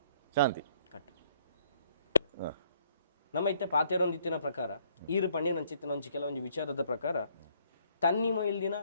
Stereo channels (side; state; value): both; inverted; correlation -0.65